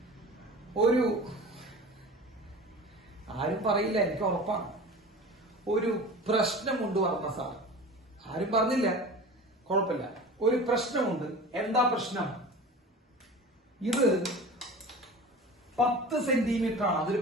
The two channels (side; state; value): both; normal; correlation 0.36